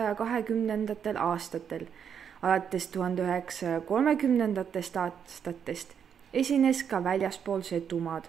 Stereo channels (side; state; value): left; quieter; 7.8 dB